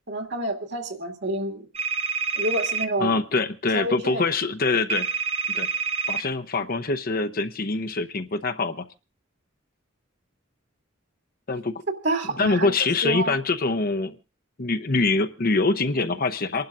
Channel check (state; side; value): normal; both; correlation 0.14